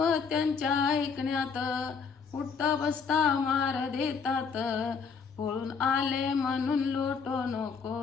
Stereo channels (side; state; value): right; quieter; 5.7 dB